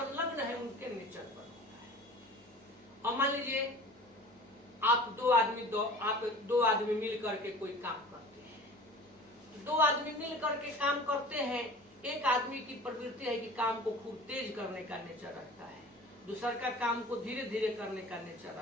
है उनके नेचर पर होता है। अब मान लीजिए आप दो आदमी मिल करके कोई काम करते हैं। दो आदमी मिल करके काम करते हैं, एक आदमी की प्रवृत्ति है कि काम को खूब तेज करने का नेचर रखता है, दूसरा का काम को धीरे धीरे करने का नेचर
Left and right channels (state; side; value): normal; both; correlation 0.42